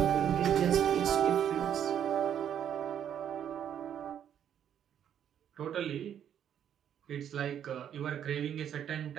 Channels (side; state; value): left; quieter; 9.4 dB